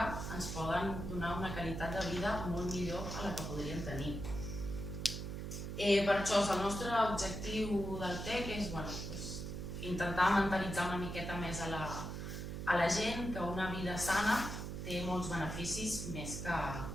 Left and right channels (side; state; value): right; noise; hum, 5 dB below the sound